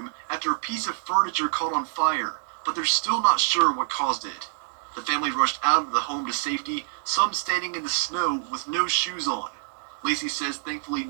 after a piece of furniture caught on fire, but they're still not sure what caused it. The family rushed out of the home to safety, some standing in the snow with no shoes on. Lacey says thankfully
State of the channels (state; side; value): silent; left; digital silence